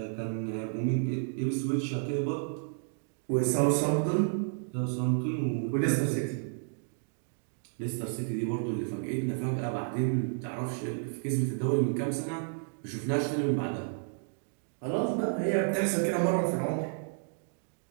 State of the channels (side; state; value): left; silent; digital silence